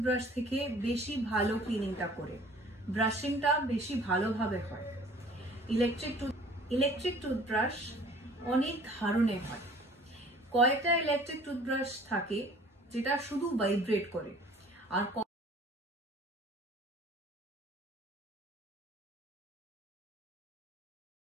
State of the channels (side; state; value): both; normal; correlation 0.51